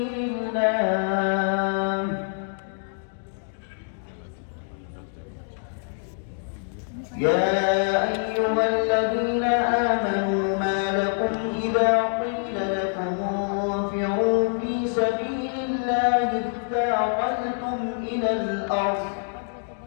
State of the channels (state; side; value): silent; right; digital silence